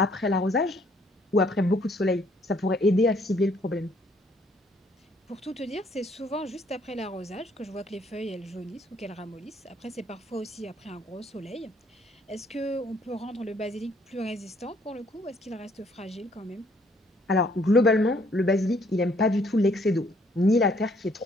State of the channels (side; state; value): both; normal; correlation 0.65